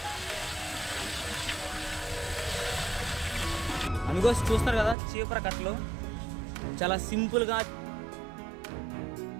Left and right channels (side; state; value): left; drops out; at 5.0 s